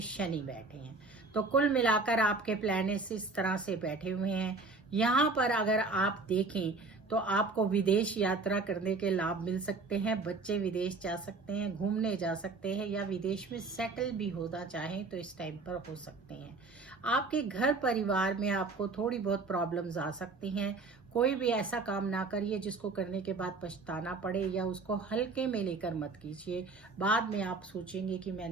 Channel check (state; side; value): quieter; left; 3.8 dB